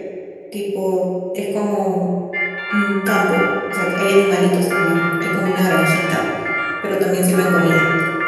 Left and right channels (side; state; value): both; identical; correlation 1.00